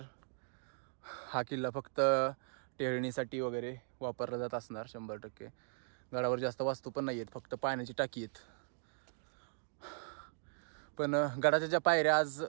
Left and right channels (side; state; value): left; silent; digital silence